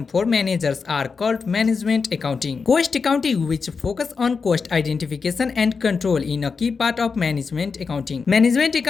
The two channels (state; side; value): quieter; right; 5.1 dB